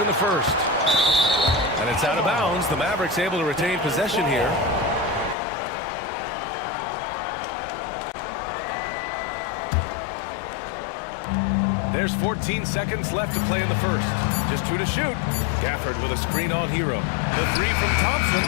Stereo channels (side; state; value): right; drops out; at 5.4 s